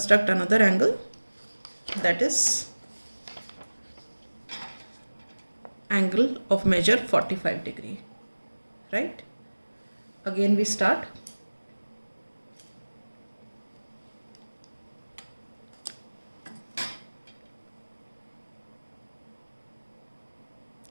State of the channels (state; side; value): inverted; both; correlation -1.00